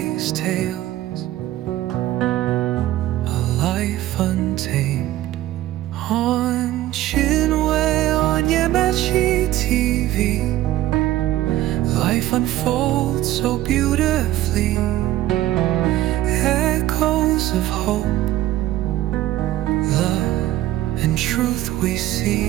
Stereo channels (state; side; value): quieter; left; 14.7 dB